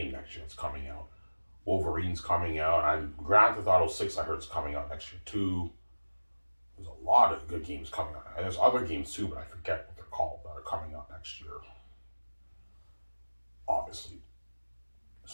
next year. It's coming out. Wolverine's coming out. And Grand Theft Auto 6, I heard, is coming out next year too. There's a lot of good games coming out. And there's other games too, but I forget what they're called that are coming out next year. Obviously.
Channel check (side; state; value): both; inverted; correlation -1.00